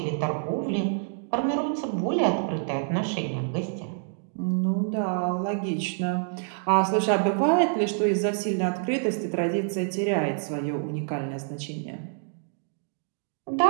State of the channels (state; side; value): silent; left; digital silence